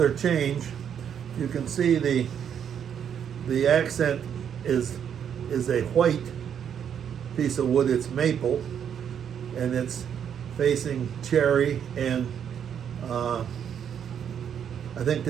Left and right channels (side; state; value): left; quieter; 8.4 dB